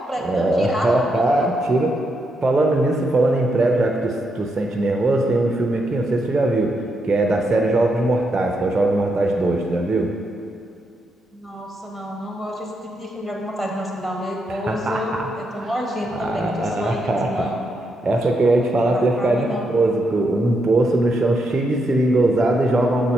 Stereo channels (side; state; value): both; normal; correlation 0.81